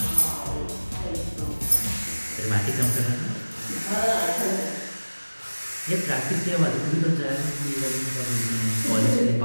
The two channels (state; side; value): inverted; both; correlation -1.00